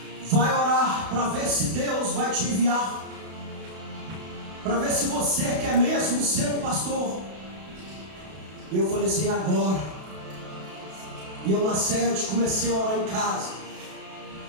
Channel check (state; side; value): late; left; 32 ms